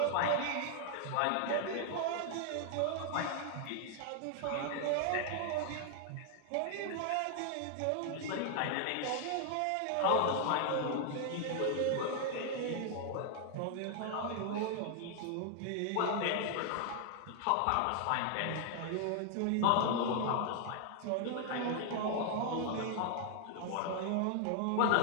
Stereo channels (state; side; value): different; both; correlation 0.00